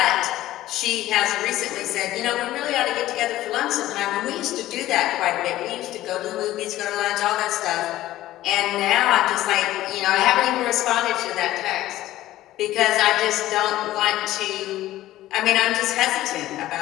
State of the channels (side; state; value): right; quieter; 15.0 dB